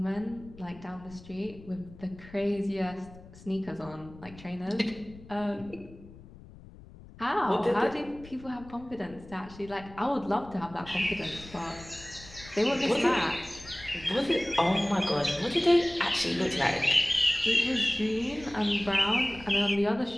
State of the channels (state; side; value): noise; left; rumble, 19 dB below the sound